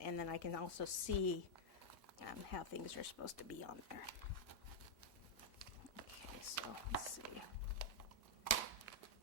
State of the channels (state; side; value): normal; both; correlation -0.03